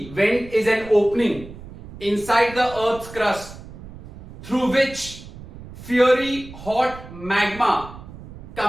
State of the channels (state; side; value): noise; right; rumble, 16 dB below the sound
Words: Vent is an opening inside the Earth's crust through which fiery hot magma